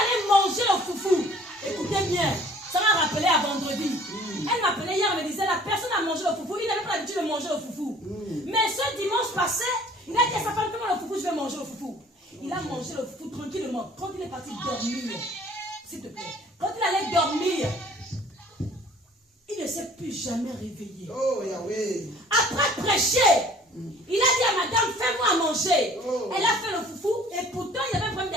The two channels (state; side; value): normal; both; correlation 0.53